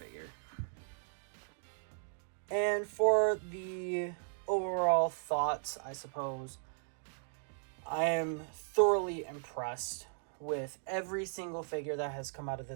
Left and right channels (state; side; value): silent; left; digital silence